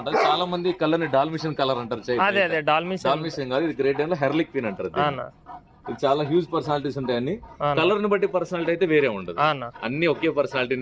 చాలా మంది కలర్ ని డాల్మిషన్ కలర్ అంటారు. అదే అదే డాల్మిషన్ కాదు, ఇది గ్రేట్ డేన్ లో హెర్లిక్ క్వీన్ అంటారు. ఇది చాలా హ్యూజ్ పర్సనాలిటీస్ ఉంటాయి. అన్ని కలర్ ని బట్టి పర్సనాలిటీ అయితే వేరే ఉండదు, అన్ని ఒకే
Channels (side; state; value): both; identical; correlation 1.00